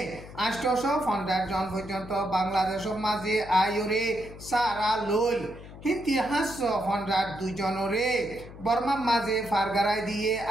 850 জন পর্যন্ত বাংলাদেশের মাঝে আয়রে সারা লই ইতিহাস 102 জনরে বর্মার মাঝে ফারগারাই দিয়ে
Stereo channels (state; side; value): noise; left; hum, 15 dB below the sound